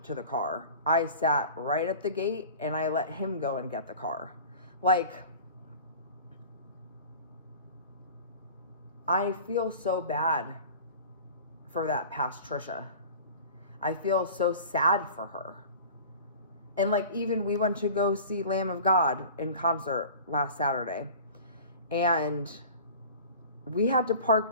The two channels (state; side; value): inverted; both; correlation -0.40